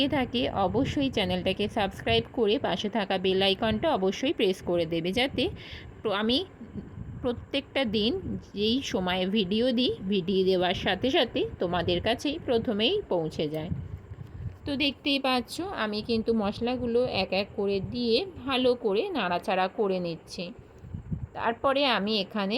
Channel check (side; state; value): both; identical; correlation 1.00